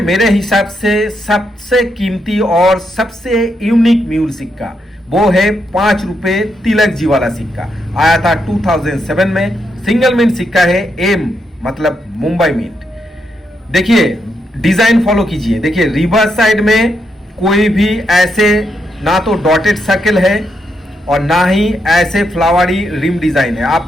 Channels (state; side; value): normal; both; correlation 0.80